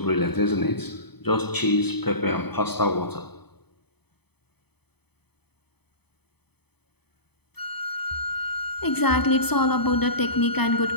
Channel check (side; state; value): right; late; 0.98 ms